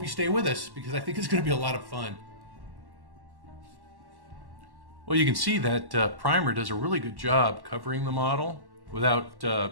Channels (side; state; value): left; late; 1.1 ms